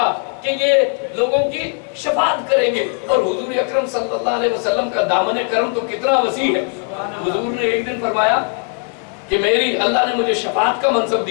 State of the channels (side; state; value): right; quieter; 38.7 dB